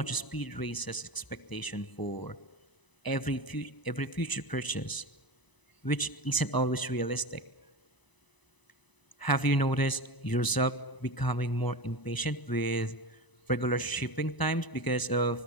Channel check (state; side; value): late; right; 1.0 ms